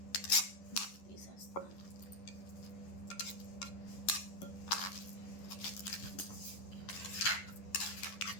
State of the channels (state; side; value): late; right; 11 ms